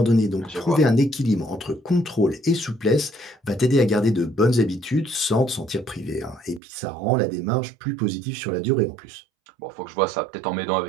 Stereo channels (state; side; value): drops out; left; at 6.6 s